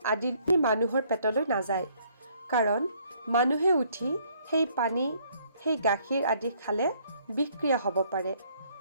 আদি মানুহৰ পেটলৈ নাযায়। কাৰণ মানুহে উঠি সেই পানী, সেই গাখীৰ আদি খালে বিষক্ৰিয়া হ'ব পাৰে।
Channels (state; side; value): inverted; both; correlation -0.65